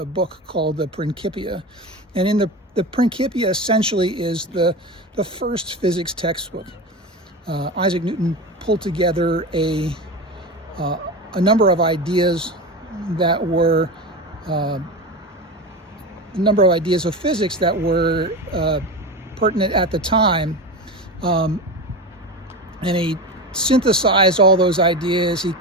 book called the Principia. And in the the Principia essentially is the first physics textbook. Isaac Newton pulled together a number of ideas that were a number of ideas of physics that were pertinent at the time, and he synthesized all those ideas. He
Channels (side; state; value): both; normal; correlation 0.24